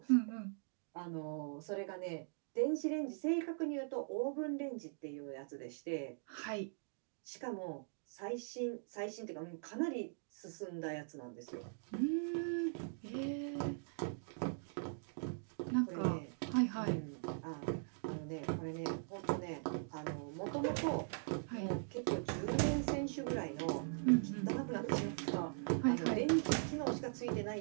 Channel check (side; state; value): left; silent; digital silence